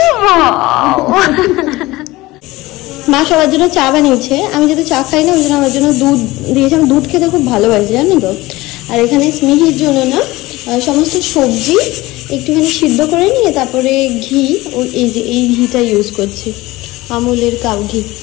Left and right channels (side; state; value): right; quieter; 19.6 dB